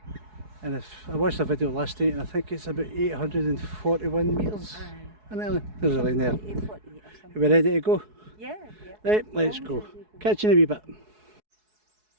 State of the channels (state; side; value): late; left; 4.7 ms